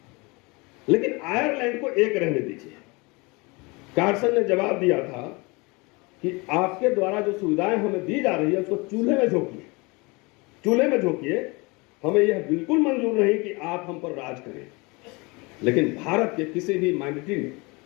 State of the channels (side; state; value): right; quieter; 26.6 dB